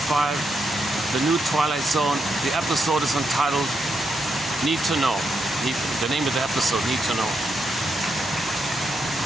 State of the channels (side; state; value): both; normal; correlation 0.82